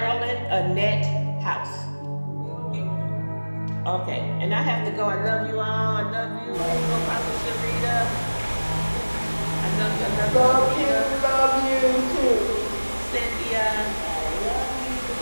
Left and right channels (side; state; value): both; inverted; correlation -1.00